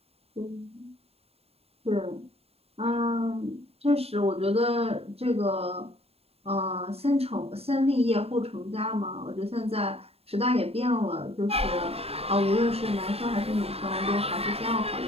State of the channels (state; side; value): late; left; 0.29 ms